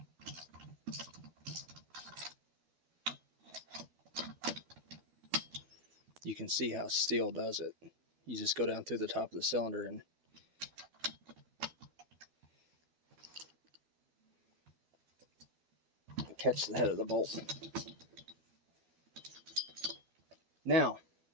You can see how steel does it. You just go down through the top of the cylinder and catch the head of the bolt. Now,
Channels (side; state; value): left; late; 12 ms